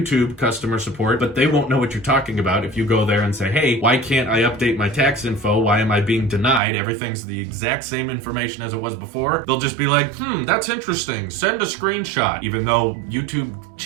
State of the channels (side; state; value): left; drops out; at 6.6 s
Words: customer support, but they won't know what you're talking about if you go there and say, hey, why can't I update my tax info? Why am I being denied? Everything's the exact same information as it was before. They'll just be like, that's interesting. Send a screenshot. Even though YouTube